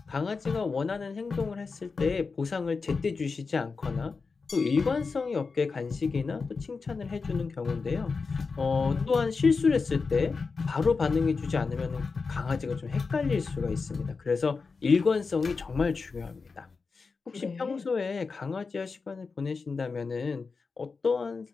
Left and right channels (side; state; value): right; quieter; 4.6 dB